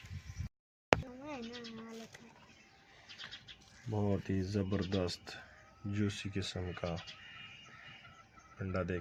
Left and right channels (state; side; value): identical; both; correlation 1.00